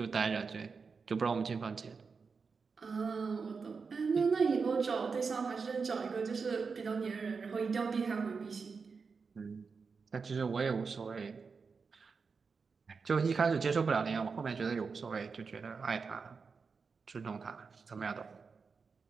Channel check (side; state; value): left; quieter; 5.1 dB